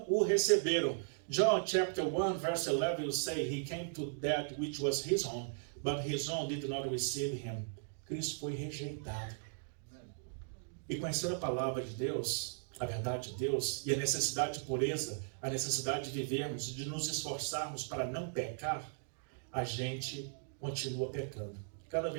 o receberam. John chapter 1 verse 11 will say, he came to that which was his own, but his own did not receive him. Cristo foi rejeitado. E conhecendo a palavra de Deus, a verdade de Deus, e a necessidade de pureza, a necessidade de vivermos, de nos esforçarmos para não pecar, a gente continua pecando. Cada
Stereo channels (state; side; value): silent; left; digital silence